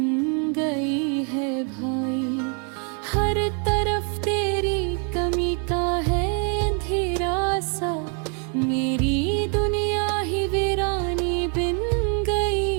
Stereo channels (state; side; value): quieter; left; 38.3 dB